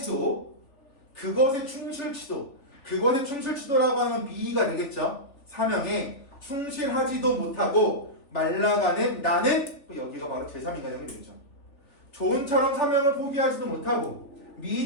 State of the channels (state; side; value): late; right; 3.4 ms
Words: 그것에 충실치도라고 하는 미가 되겠죠. 사명에 충실하지도 못하고 말라가는 나는 여기가 바로 제3인간형이 되겠죠. 조은처럼 사명을 포기하지도 못하고